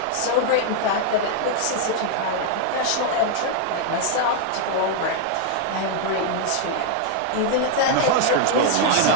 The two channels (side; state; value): both; different; correlation 0.00